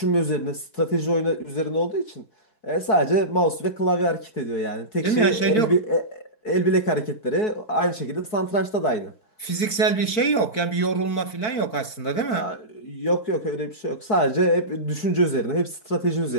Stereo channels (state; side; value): late; right; 4.5 ms